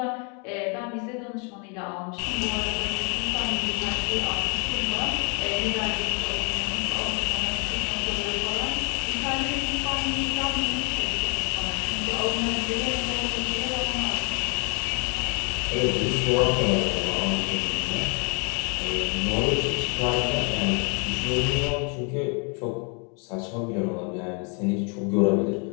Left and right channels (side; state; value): right; quieter; 35.6 dB